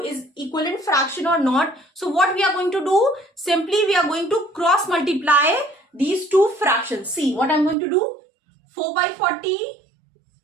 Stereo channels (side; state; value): left; drops out; at 7.8 s